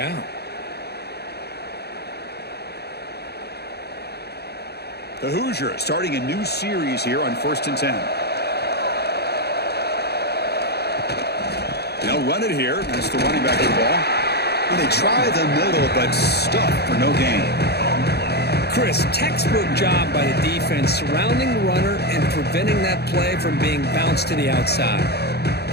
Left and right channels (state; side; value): late; right; 0.48 ms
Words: The Hoosiers starting a new series here on 1st and 10. They'll run it here. That's the running back of the ball. And they try the middle, but stuffed for no gain. Chris, textbook job by the defense surrounding the runner and preventing that play from being bounced to the outside.